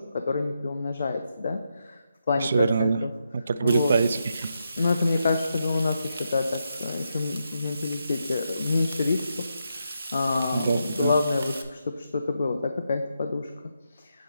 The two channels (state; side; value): inverted; both; correlation -0.83